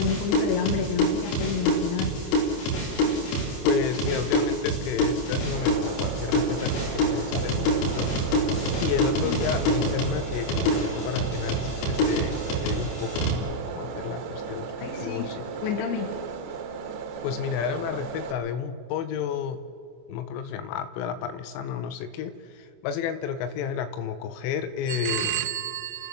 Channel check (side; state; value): right; late; 24 ms